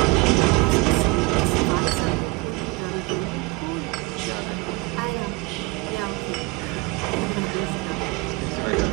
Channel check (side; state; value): left; quieter; 24.4 dB